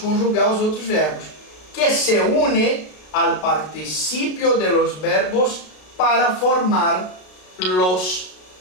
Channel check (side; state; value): right; late; 33 ms